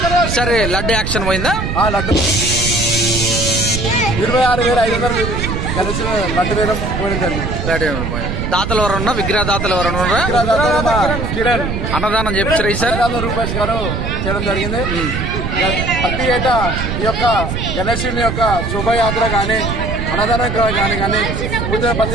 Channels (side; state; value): right; noise; rumble, 3 dB below the sound